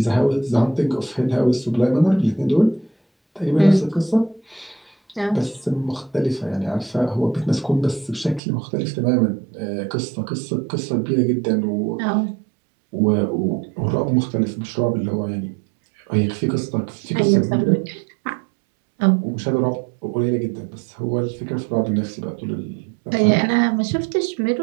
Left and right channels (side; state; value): left; drops out; at 8.4 s